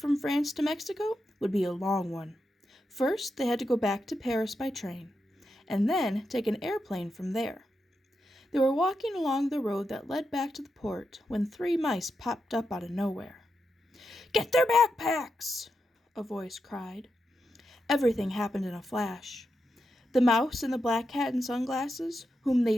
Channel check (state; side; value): normal; both; correlation 0.86